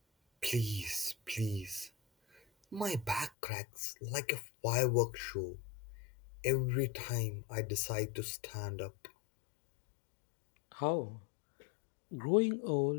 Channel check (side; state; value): right; drops out; at 3.3 s